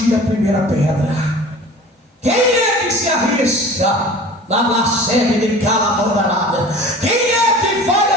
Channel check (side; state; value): both; normal; correlation 0.41